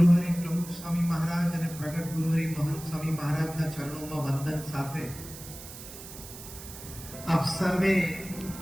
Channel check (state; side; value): noise; right; hiss, 14 dB below the sound